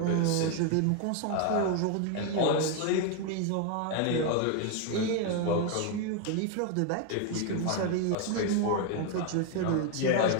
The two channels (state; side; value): different; both; correlation 0.01